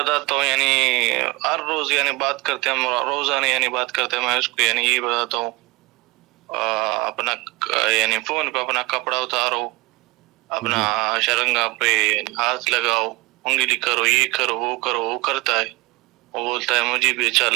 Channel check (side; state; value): left; quieter; 22.5 dB